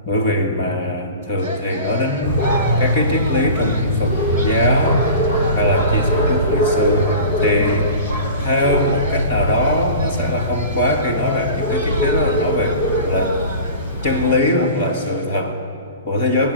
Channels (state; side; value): inverted; both; correlation -0.37